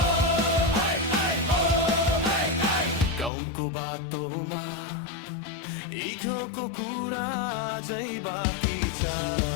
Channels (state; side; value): drops out; right; at 3.3 s